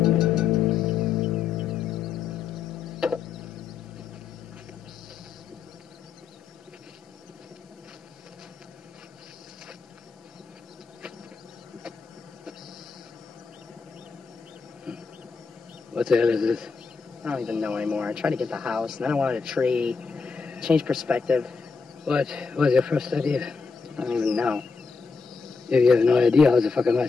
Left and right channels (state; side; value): quieter; right; 5.1 dB